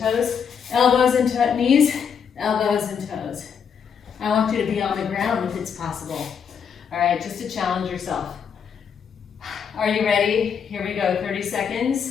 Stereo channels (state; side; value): quieter; right; 7.2 dB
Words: elbows and knees, elbows and toes. I want you to be on the ground if it's possible. All right, just to challenge yourself. Are you ready? Here we go, 30